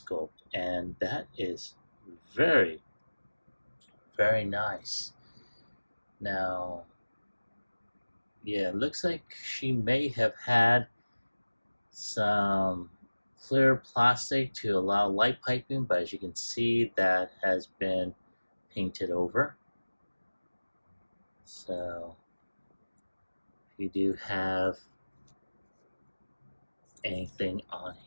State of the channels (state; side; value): inverted; both; correlation -1.00